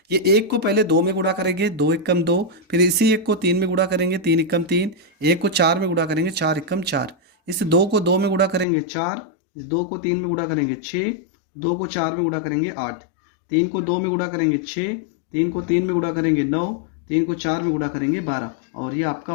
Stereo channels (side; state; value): right; drops out; at 8.7 s